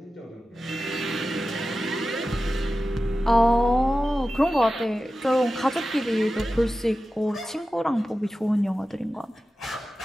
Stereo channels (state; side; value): normal; both; correlation 0.94